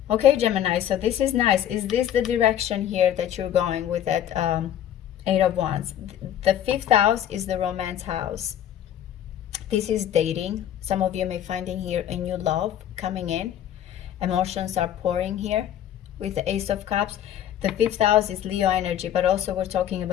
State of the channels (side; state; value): right; quieter; 10.8 dB